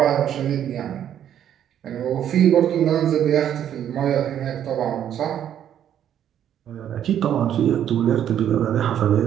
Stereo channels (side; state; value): left; quieter; 10.1 dB